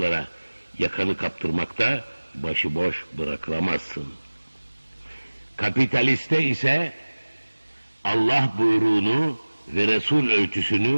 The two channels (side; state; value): both; inverted; correlation -1.00